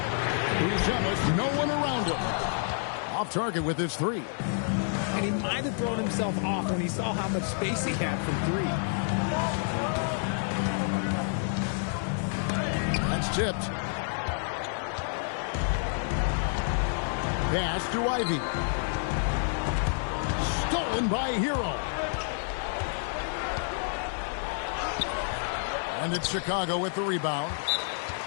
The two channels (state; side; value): silent; right; digital silence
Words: He's jealous. No one around him. Off target with his three. And he might have thrown himself off when he saw how much space he had from three. That's tipped. Pass to Ivy. Stolen by Hero. And it's Chicago with the rebound.